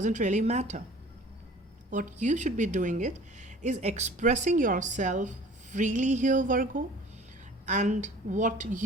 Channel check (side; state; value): both; normal; correlation 0.47